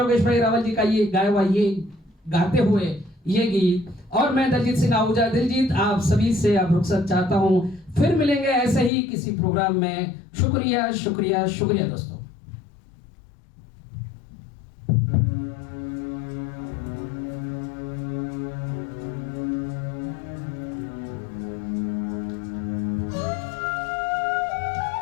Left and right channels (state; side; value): drops out; right; at 8.9 s